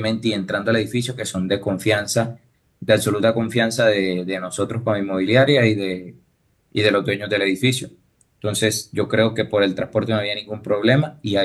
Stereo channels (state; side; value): identical; both; correlation 1.00